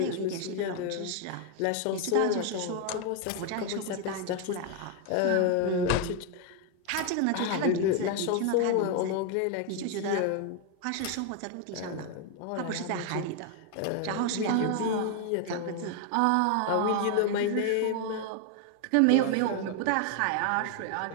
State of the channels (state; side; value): different; both; correlation 0.01